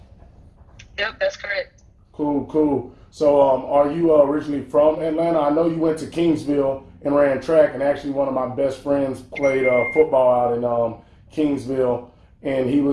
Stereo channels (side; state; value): both; identical; correlation 1.00